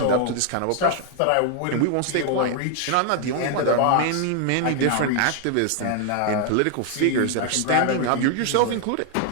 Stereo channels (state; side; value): different; both; correlation 0.00